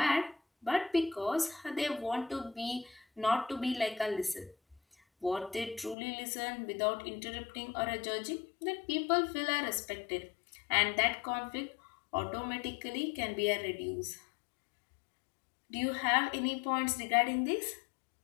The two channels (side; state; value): right; drops out; at 6.0 s